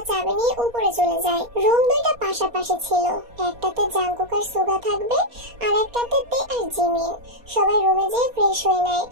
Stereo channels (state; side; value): late; left; 4.2 ms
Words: চাবি নিয়ে উপরে চলে যায়। রুম 2টা পাশাপাশি ছিল। একটাতে জাঙ্কুক আর সুগা থাকবে, আর একটাতে তে আর জিমিন। সবাই রুমে যেয়ে ফ্রেশ হয়ে নেয়।